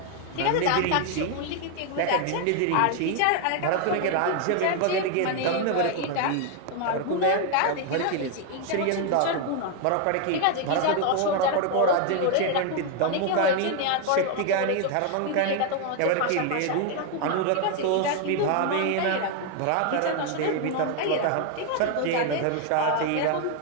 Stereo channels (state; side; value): different; both; correlation 0.01